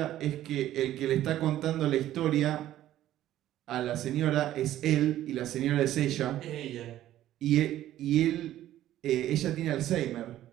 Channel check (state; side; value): quieter; left; 13.2 dB